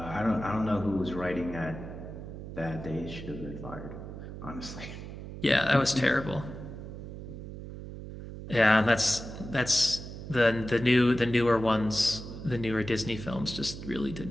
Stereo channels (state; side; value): noise; right; hum, 10 dB below the sound